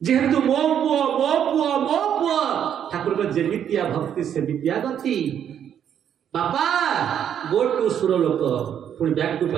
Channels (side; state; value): left; quieter; 9.2 dB